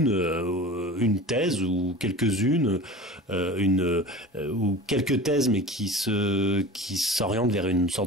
thèse ou quelques-unes, ou quelques thèses, mais qui s'orientent vers une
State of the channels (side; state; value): both; normal; correlation 0.36